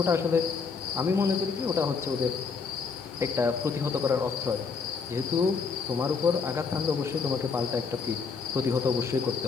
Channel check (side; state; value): right; quieter; 5.2 dB